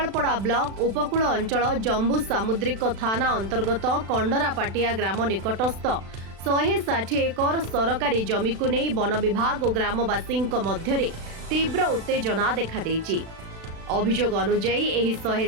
ब्लॉक उपकूल अंचल जम्बू सामुद्रिक थाना अंतर्गत कंडरापाटिया ग्राम निकटस्थ 160 एकर सरकारी जमी को नहीं वन विभाग और ग्रामवासी मध्य तीव्र उत्तेजना देखा देछि। अभियोग अनुजाई एही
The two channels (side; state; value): left; late; 36 ms